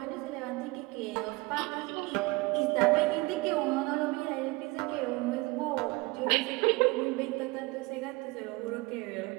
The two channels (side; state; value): left; quieter; 24.4 dB